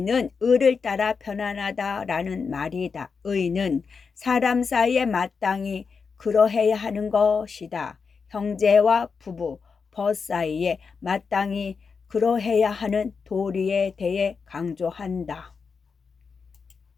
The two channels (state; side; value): quieter; right; 5.3 dB